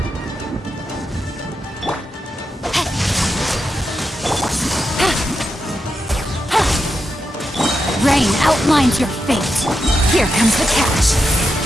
Rain outlines your fate. Here comes the catch.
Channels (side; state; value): both; normal; correlation 0.87